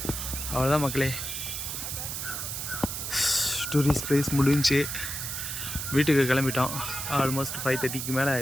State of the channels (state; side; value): noise; right; hiss, 4 dB below the sound